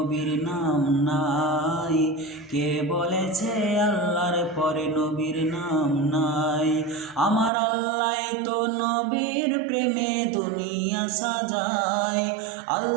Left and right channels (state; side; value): drops out; left; at 7.5 s